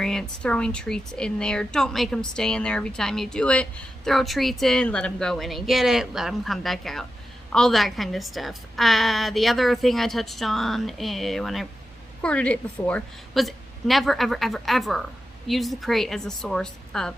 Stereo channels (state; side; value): normal; both; correlation 0.90